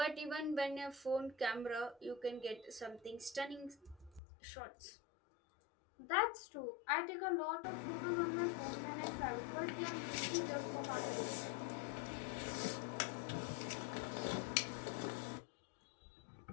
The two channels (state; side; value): drops out; right; at 4.2 s